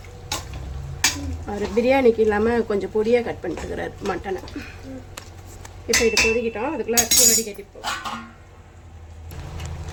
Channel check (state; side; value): identical; both; correlation 1.00